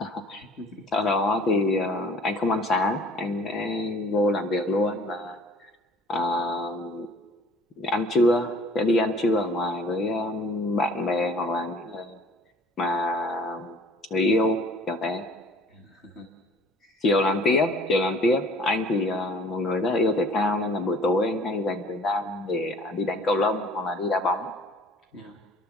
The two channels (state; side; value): normal; both; correlation 0.51